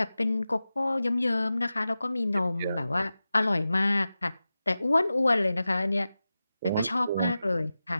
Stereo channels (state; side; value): inverted; both; correlation -0.94